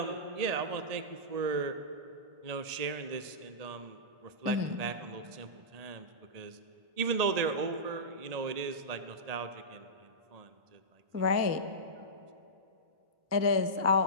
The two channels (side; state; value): left; late; 1.8 ms